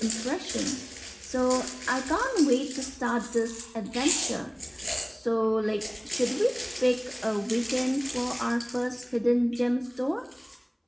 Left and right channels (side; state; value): both; identical; correlation 1.00